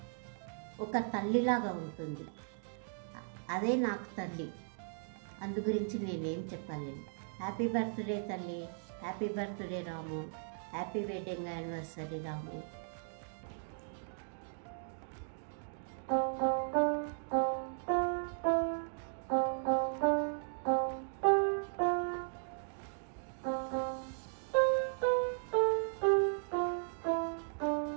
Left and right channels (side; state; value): left; silent; digital silence